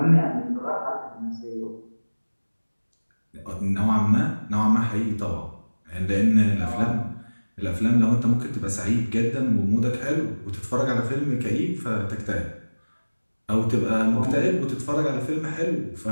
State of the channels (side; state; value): both; inverted; correlation -1.00